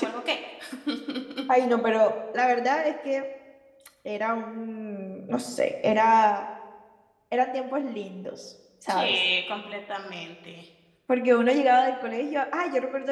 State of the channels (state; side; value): identical; both; correlation 1.00